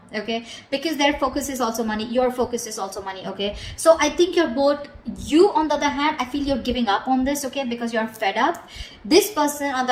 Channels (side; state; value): both; identical; correlation 1.00